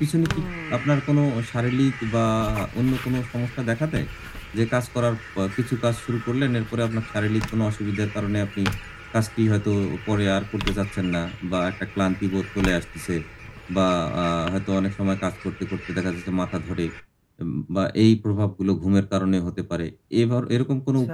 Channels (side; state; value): both; identical; correlation 1.00